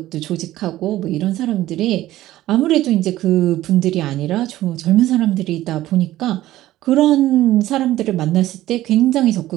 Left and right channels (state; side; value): quieter; left; 15.0 dB